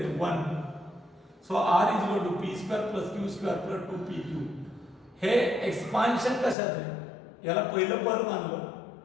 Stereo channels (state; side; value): drops out; right; at 6.6 s